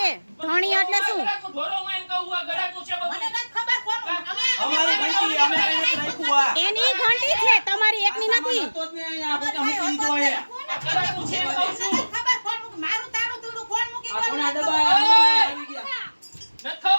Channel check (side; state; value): both; inverted; correlation -1.00